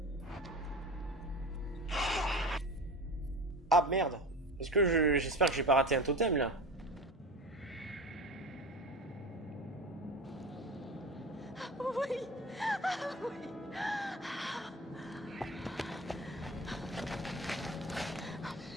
Ah merde. Est-ce que j'espère que j'ai pas raté un totem là? Oui. Ah, oui. Oh,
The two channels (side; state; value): both; normal; correlation 0.32